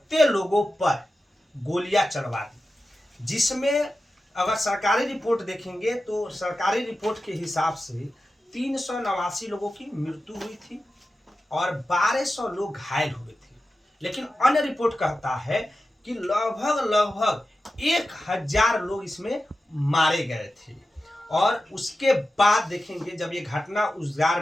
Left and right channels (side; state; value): both; normal; correlation 0.93